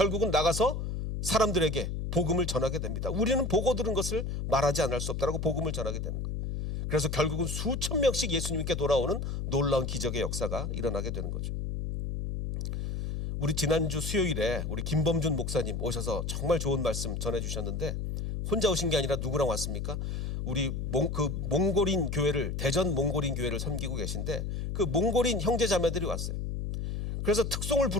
나가서 사람들에게 복음을 전하게 됩니다. 우리는 보고 들은 것을 말하지 않을 수 없다라고 복음을 전하게 되는 거예요. 그래서 결국은 수천 명씩 예수님께 돌아오는 놀라운 기적의 역사가 일어나게 되는 거죠. 우리 지난주 수요일에 우리 김범준 목사님 오셔서 정말 좋은 말씀 전해주셨는데, 혼자 오신 게 아니라 누구랑 왔습니까? 우리 몽골인 교회를, 대전 몽골인 교회를 섬기고 계신데, 그 몽골인 형제 자매들이 왔어요. 그래서 특송을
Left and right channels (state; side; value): noise; left; hum, 3 dB below the sound